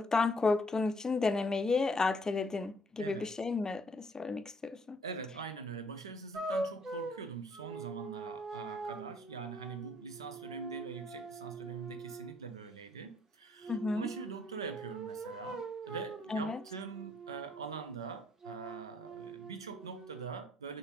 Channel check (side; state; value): both; normal; correlation 0.68